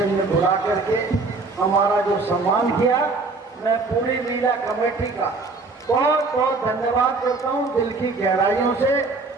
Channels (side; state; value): left; quieter; 3.8 dB